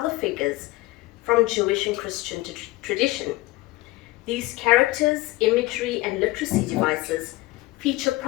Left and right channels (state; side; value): quieter; right; 19.8 dB